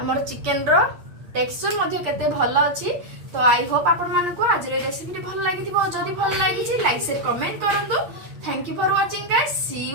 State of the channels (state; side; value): late; left; 8.5 ms